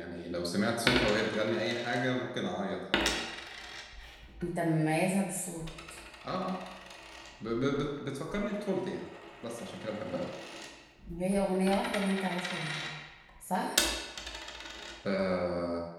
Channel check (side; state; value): both; identical; correlation 1.00